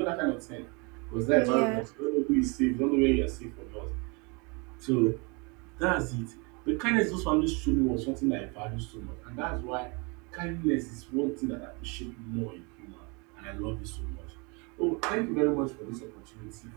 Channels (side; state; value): left; quieter; 30.6 dB